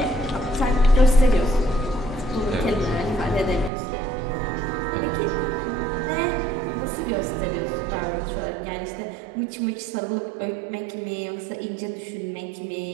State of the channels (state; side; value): drops out; left; at 3.7 s